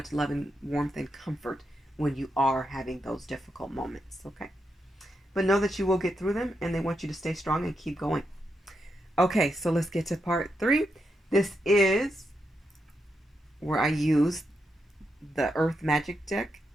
love and warmth and comfort when you are having those difficult moments. Okay? But know that you will get through them, and they want you to stay strong and keep going. Okay, so let's get to part 3. This is where I use the Earth Magic deck,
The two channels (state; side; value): normal; both; correlation 0.83